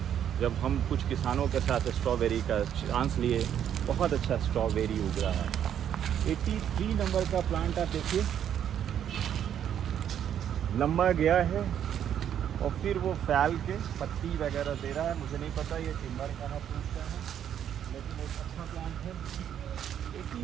जब हम कुछ किसानों के साथ स्ट्रॉबेरी का चांस लिए, बहुत अच्छा स्ट्रॉबेरी उग रहा है। 83 नंबर का प्लांट आप देखिए, लंबा गया है और फिर वो फैल के पत्ती वगैरह दे रहा है। मुझे नहीं पता ये टिम्बर का है, फ्रूट का है, लेकिन एक अच्छा प्लांट है।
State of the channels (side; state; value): left; quieter; 9.6 dB